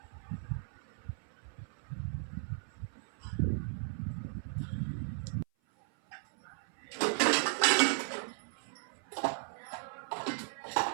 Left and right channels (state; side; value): silent; left; 54 dB below the other